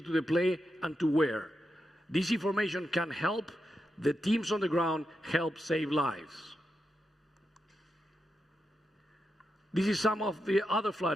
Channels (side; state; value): both; normal; correlation 0.87